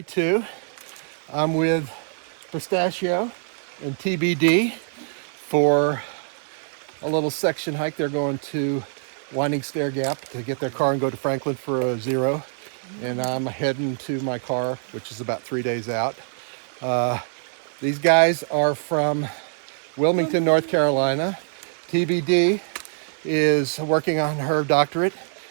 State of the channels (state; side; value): silent; left; digital silence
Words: 2. I'm with Pistachio and TBD for a little section hike. They're going to Winding Stair Gap to get their car and go to Franklin for a 0. And I'm heading to my car, which is about 3 days out. These guys are from Wilmington, North Carolina. TBD is working on her doctorate